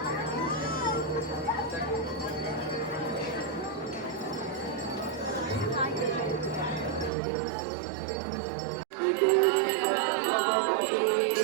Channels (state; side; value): drops out; left; at 7.1 s